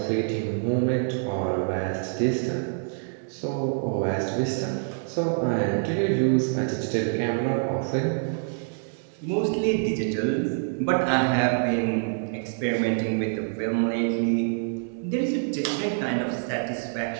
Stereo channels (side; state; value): left; silent; digital silence